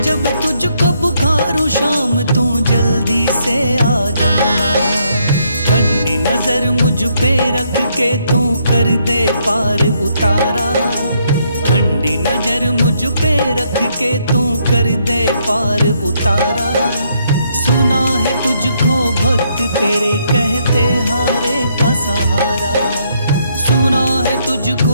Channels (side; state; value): both; inverted; correlation -0.73